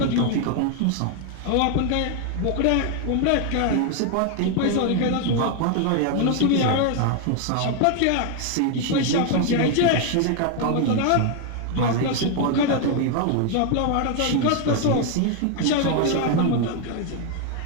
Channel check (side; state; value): both; different; correlation 0.01